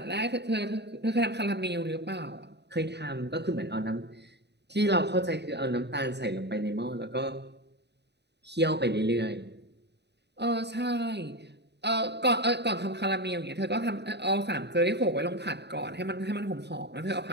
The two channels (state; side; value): late; left; 0.49 ms